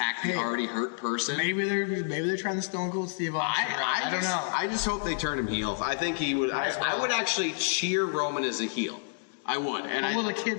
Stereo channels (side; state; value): right; silent; digital silence